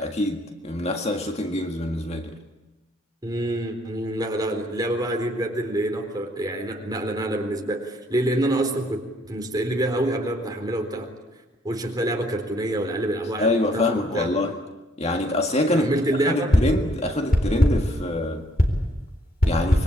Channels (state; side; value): normal; both; correlation 0.66